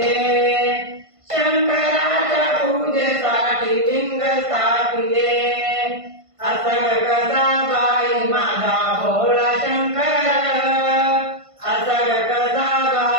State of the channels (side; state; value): left; late; 1.5 ms